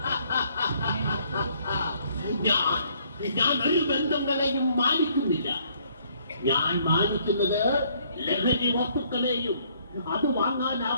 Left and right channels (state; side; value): inverted; both; correlation -0.65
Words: ഞാൻ ഒരു ബന്ധങ്ങളെയും മാനിക്കുന്നില്ല. ഞാൻ മാനിക്കുന്നത് ലഹരി വസ്തുക്കളെയും അത്